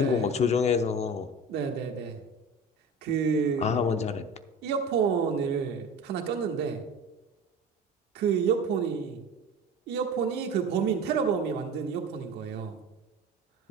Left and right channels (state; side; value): normal; both; correlation 0.35